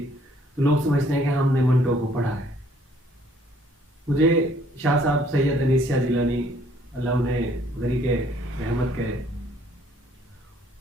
तो लोग समझते हैं कि हमने बंटो को पढ़ा है। मुझे शाह साहब सैयद अनीस शाह जिलानी, अल्लाह उन्हें गरीके रहमत करे,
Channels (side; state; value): both; normal; correlation 0.62